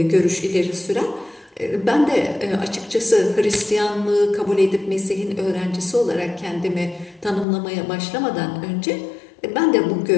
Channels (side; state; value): right; drops out; at 7.5 s